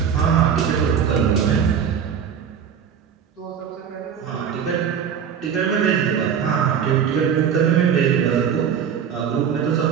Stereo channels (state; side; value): quieter; left; 7.9 dB